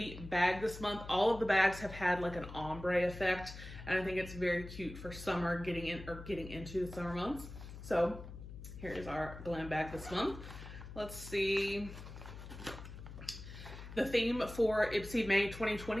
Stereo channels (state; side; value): noise; left; hum, 12 dB below the sound